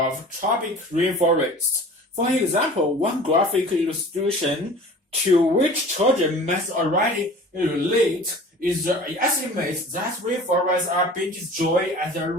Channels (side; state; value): both; normal; correlation 0.43